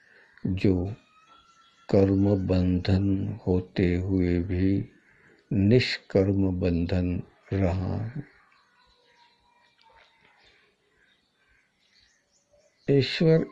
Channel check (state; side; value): identical; both; correlation 1.00